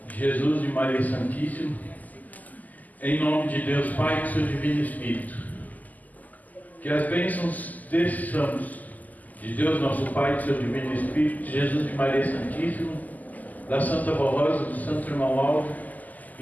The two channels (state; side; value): late; right; 0.080 ms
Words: de Jesus e Maria Santíssima, em nome de Deus Pai e do seu Divino Espírito. Que as bênçãos desses santos, de Deus nosso Pai e do seu Divino Espírito, de Jesus e Maria Santíssima, da Santa Rosa, do Santo Irmão Aldo